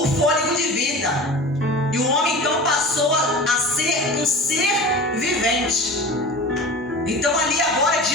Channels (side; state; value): both; normal; correlation 0.36